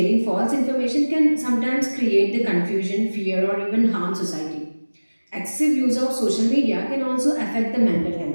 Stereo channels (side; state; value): both; inverted; correlation -1.00